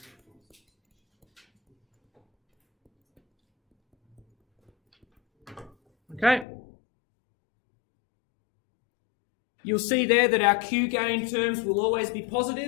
Okay. You'll see there that our Q gain terms will always be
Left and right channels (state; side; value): drops out; right; at 6.5 s